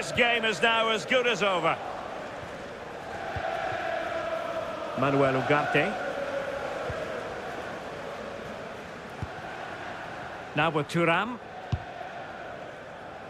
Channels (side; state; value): both; identical; correlation 1.00